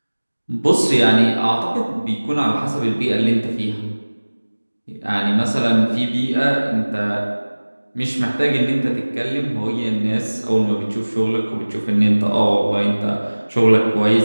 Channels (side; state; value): both; inverted; correlation -1.00